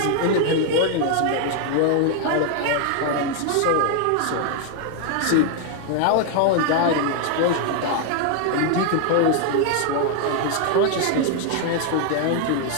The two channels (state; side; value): different; both; correlation 0.00